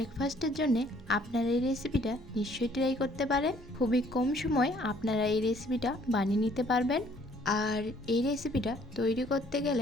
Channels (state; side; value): noise; right; hum, 21 dB below the sound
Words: জন্য আপনারা এই রেসিপিটা নিশ্চয়ই ট্রাই করতে পারেন। খুবই কম সময় আপনারা এই রেসিপিটা বানিয়ে নিতে পারবেন। আর এই রেসিপিটা তৈরি করতে